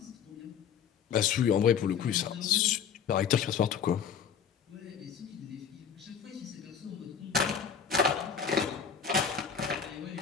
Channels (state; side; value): quieter; right; 7.4 dB